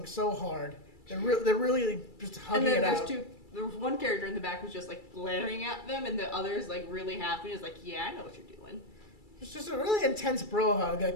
so hard. They're really just hugging it out. There was one character in the back who's just like glaring at them, and the other's like really happy. He's like, "Yeah, I know what you're doing." It's just a really intense bro hug that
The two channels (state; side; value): late; right; 2.3 ms